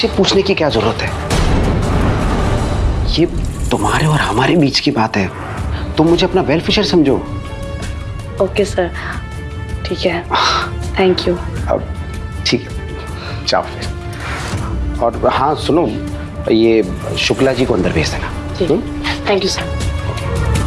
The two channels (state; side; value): identical; both; correlation 1.00